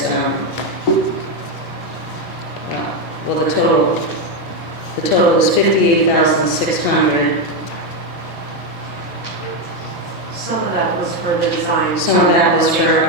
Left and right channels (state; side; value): normal; both; correlation 0.07